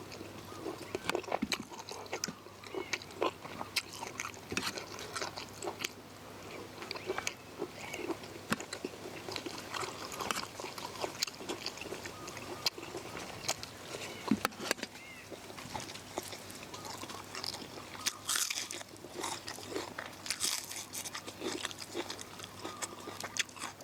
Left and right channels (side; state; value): both; identical; correlation 1.00